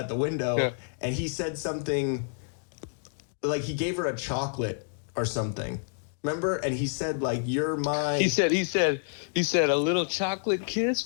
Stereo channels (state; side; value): silent; right; 59 dB below the other